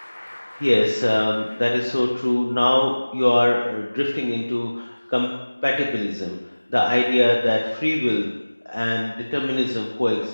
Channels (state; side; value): inverted; both; correlation -1.00